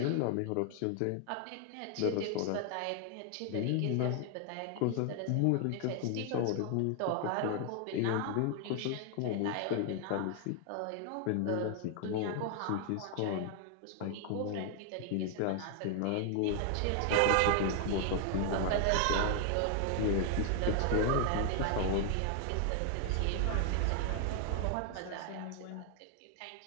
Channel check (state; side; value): different; both; correlation 0.00